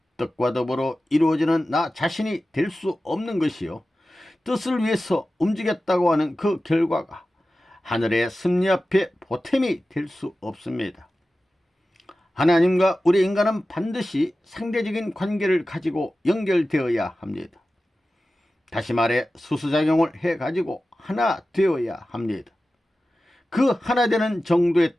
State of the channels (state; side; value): normal; both; correlation 0.95